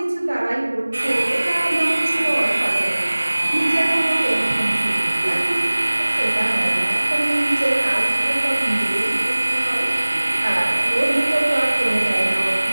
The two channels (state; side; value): inverted; both; correlation -1.00